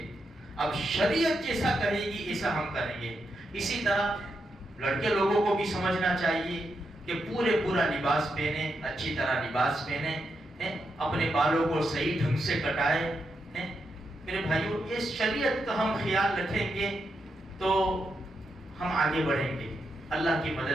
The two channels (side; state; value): both; normal; correlation 0.84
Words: اب شریعت جیسا کہے گی ایسا ہم کریں گے۔ اسی طرح لڑکے لوگوں کو بھی سمجھنا چاہیے کہ پورا لباس پہنے، اچھی طرح لباس پہنے، اپنے بالوں کو صحیح ڈھنگ سے کٹائے۔ میرے بھائیوں یہ شریعت کا ہم خیال رکھیں گے تو ہم آگے بڑھیں گے، اللہ کی